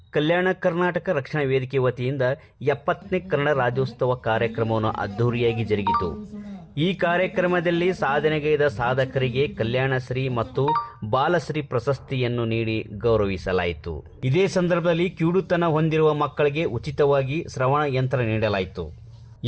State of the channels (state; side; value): identical; both; correlation 1.00